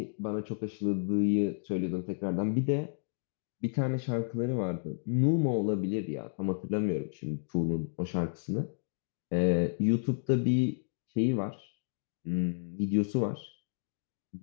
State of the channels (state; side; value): silent; right; digital silence